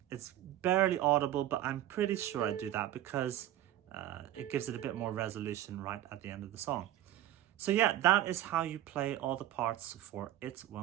It's barely audible, but I'm pretty sure I do that because it gives it a bit more resolution right at the end of the song. So yeah, that is how you play all the parts for It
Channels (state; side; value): quieter; left; 13.3 dB